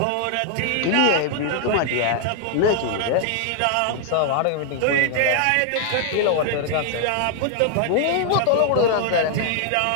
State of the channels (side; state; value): both; different; correlation 0.00